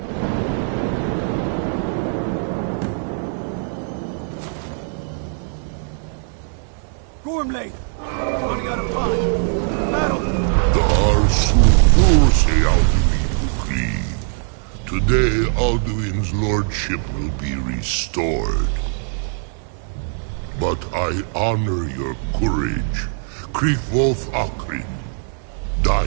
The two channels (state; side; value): silent; left; 57 dB below the other